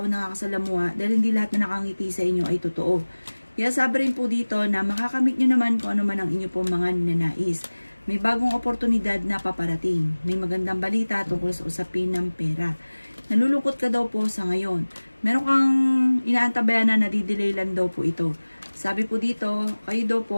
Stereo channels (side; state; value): both; inverted; correlation -1.00